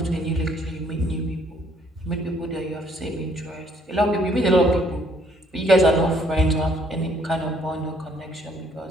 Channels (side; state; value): both; normal; correlation 0.64